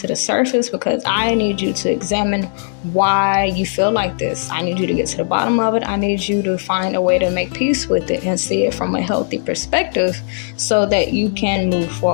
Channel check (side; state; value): right; silent; digital silence